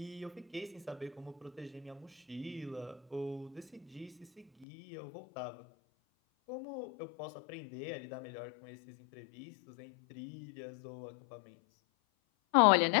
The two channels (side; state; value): right; drops out; at 4.7 s